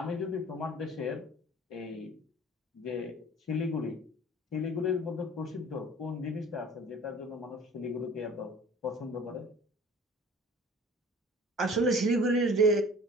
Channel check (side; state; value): both; normal; correlation 0.46